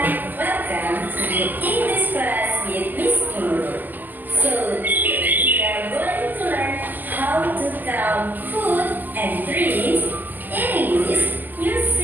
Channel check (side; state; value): left; late; 0.086 ms